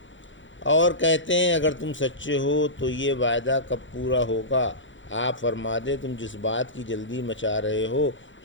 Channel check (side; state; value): right; late; 0.55 ms